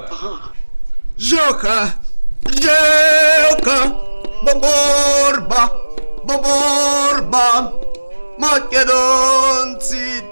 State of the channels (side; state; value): both; inverted; correlation -1.00